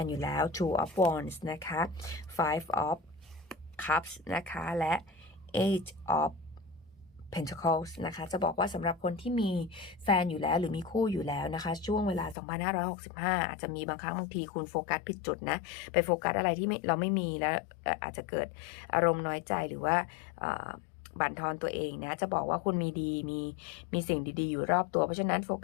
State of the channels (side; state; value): right; drops out; at 12.4 s